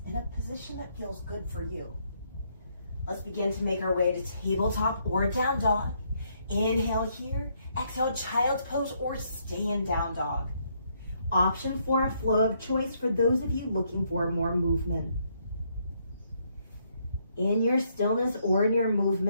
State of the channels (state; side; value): inverted; both; correlation -0.72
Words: in a position that feels good for you. Let's begin to make our way to tabletop or down dog. Inhale here, exhale, child's pose or stay in down dog. Option for a flow of choice for those of you looking for more movement. In your stillness or in your